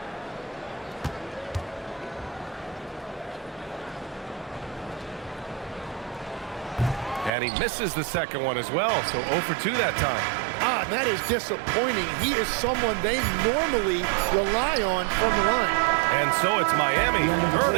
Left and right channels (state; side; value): drops out; left; at 7.3 s